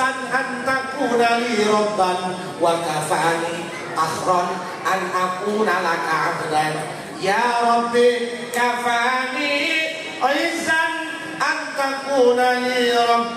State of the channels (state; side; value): identical; both; correlation 1.00